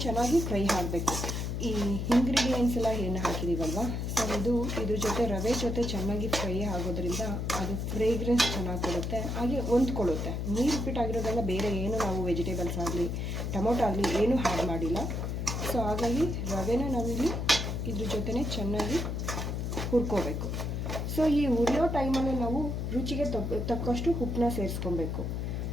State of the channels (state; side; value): noise; left; hum, 2 dB below the sound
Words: ಚೆನ್ನಾಗಿ ಫ್ರೈ ಆಗಬೇಕು. ಈ ಇಂಗ್ರೀಡಿಯೆಂಟ್ಸ್ ಎಲ್ಲ ಏನು ಹಾಕಿದ್ದೀವಲ್ವ, ಸೊ ಇದ್ರ ಜೊತೆ ರವೆ ಜೊತೆ ಚೆನ್ನಾಗಿ ಫ್ರೈ ಆಗೋದ್ರಿಂದ ಅದು ಫ್ರೇಗ್ರೆನ್ಸ್ ಚೆನ್ನಾಗಿ ಕೊಡುತ್ತೆ, ಹಾಗೆ ಹೊಂದ್ಕೊಳ್ಳುತ್ತೆ. ನೀರುಪ್ಪಿಟ್ಟಾಗಿರೋದ್ರಿಂದ ಬೇರೆ ಏನು ನಾವು ವೆಜಿಟೇಬಲ್ಸ್ ಆಗಲಿ ಟೊಮೊಟೊ ಆಗಲಿ ಏನೂ ಆ್ಯಡ್ ಮಾಡಿಲ್ಲ. ಸೊ ಹಾಗಾಗಿ ರವೆನ ನಾವಿಲ್ಲಿ ಇದ್ರ ಜೊತೆನೇ ಚೆನ್ನಾಗಿ ಹುರ್ಕೋಬೇಕು. ಸೊ ಈ ಹುರಿಯೋ ಟೈಮಲ್ಲಿ ನಾವು ರುಚಿಗೆ ತಕ್ಕಷ್ಟು ಉಪ್ಪನ್ನ ಸೇರಿಸ್ಕೊಬೇಕು.